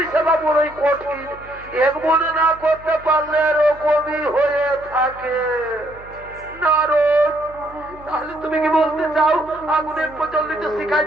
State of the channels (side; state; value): right; noise; hum, 22 dB below the sound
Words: সেবা বড়ই কঠিন, এক মনে না করতে পারলে এরকমই হয়ে থাকে। নারদ, তাহলে তুমি কি বলতে চাও আগুনের প্রচলিত শিখায়